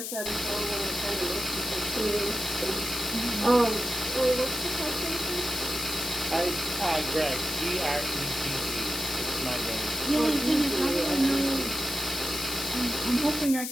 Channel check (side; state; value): left; noise; hiss, 4 dB below the sound